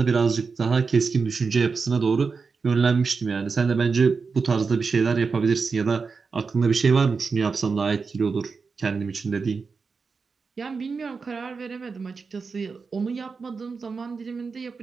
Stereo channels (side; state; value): left; quieter; 4.9 dB